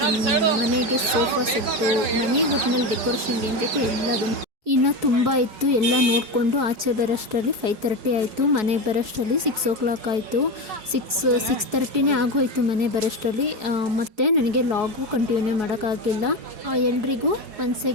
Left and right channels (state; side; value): late; left; 4.7 ms